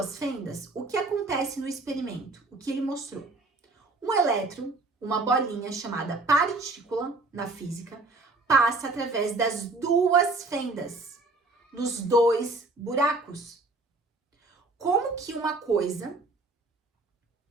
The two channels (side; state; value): left; quieter; 3.4 dB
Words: fendas, o que acontece no experimento? O que ele mostrou? Um elétron, uma bolinha chamada partícula na física, passa através das 2 fendas, nos 2 buracos. Como que uma coisa